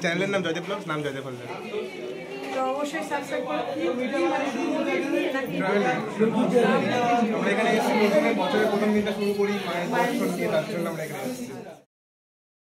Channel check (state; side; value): identical; both; correlation 1.00